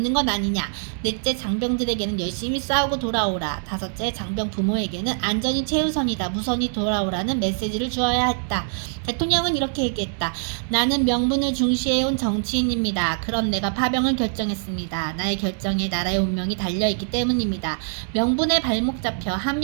건 아니냐. 넷째, 장병들에게는 열심히 싸우고 돌아오라. 다섯째, 장병 부모에게는 안전이 최우선이다. 무선히 돌아오라는 메시지를 주어야 했다. 대통령은 이렇게 얘기했다. 나는 명분을 중시해온 정치인입니다. 그럼 내가 파병을 결정했습니다. 나의 결정에 나라의 운명이 달려있기 때문입니다. 명분에 발목 잡혀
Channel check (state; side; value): silent; left; digital silence